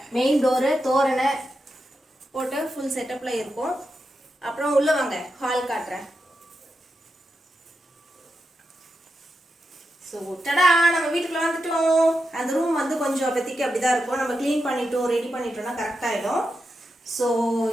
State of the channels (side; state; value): both; normal; correlation 0.87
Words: மெயின் டோரு, தோரணை போட்டு ஃபுல் செட்டப்பில் இருக்கும். அப்புறம் உள்ளே வாங்க, ஹால் காட்டுறேன். ஸோ டடா, நம்ம வீட்டுக்குள்ளே வந்துட்டோம். அந்த ரூம் வந்து கொஞ்சம் அப்போதைக்கு அப்படி தான் இருக்கும். நம்ம க்ளீன் பண்ணிட்டோம், ரெடி பண்ணிட்டோம்னா கரெக்டாகிடும். ஸோ